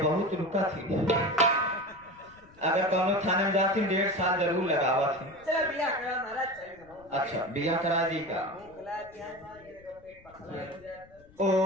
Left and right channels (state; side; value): noise; left; rumble, 26 dB below the sound